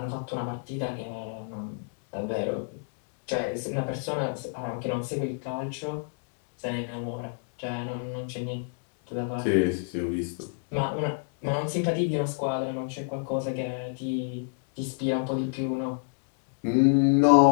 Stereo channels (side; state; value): right; silent; digital silence